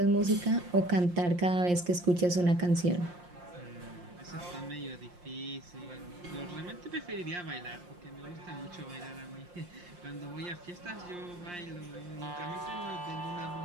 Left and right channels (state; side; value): late; left; 5.7 ms